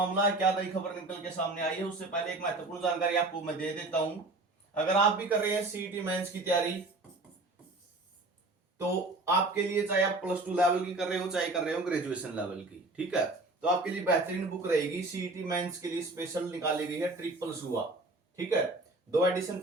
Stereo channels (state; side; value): quieter; left; 3.0 dB